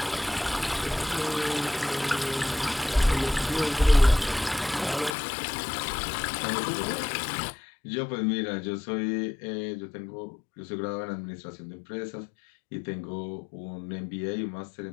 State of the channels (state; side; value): drops out; right; at 5.2 s